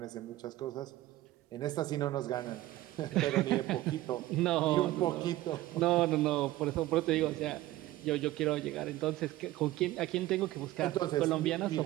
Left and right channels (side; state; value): left; quieter; 16.2 dB